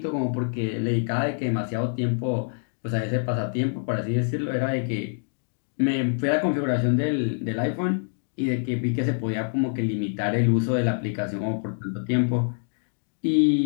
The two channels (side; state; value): right; silent; digital silence